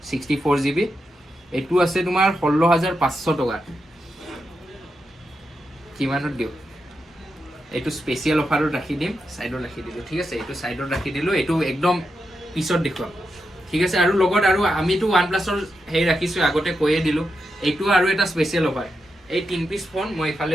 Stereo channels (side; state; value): both; normal; correlation 0.87